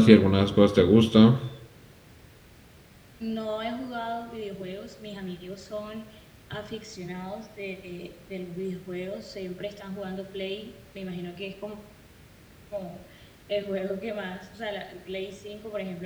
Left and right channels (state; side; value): identical; both; correlation 1.00